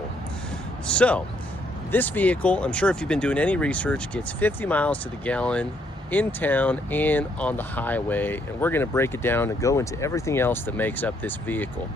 So, this vehicle, I'm sure if you've been doing any research, gets 50 miles to the gallon in town and on the highway, and we're going to break it down and go into everything else that makes up this vehicle.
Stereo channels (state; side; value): normal; both; correlation 0.71